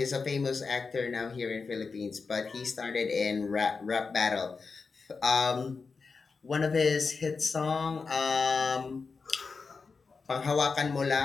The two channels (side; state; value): right; quieter; 4.7 dB